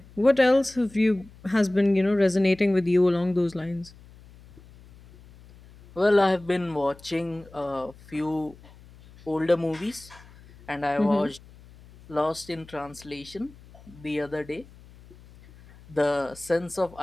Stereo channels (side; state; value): left; noise; hum, 23 dB below the sound